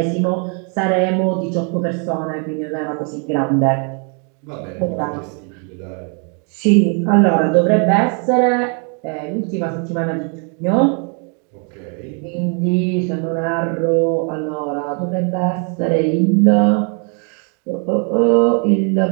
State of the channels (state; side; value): quieter; left; 38.9 dB